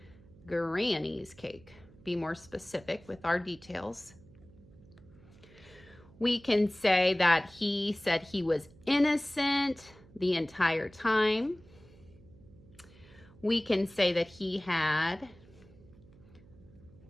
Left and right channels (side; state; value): right; noise; hum, 24 dB below the sound